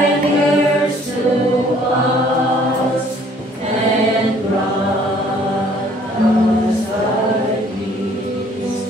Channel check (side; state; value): both; normal; correlation 0.59